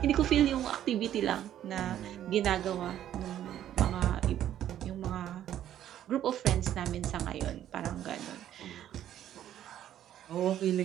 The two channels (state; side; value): quieter; left; 11.4 dB